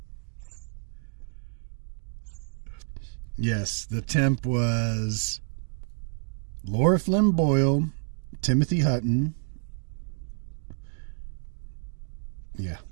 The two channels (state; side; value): silent; left; 56 dB below the other